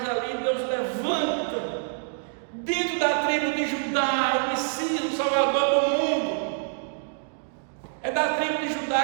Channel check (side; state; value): left; silent; digital silence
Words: ali Deus levanta, dentro da tribo de Judá, o Messias, o Salvador do mundo. É da tribo de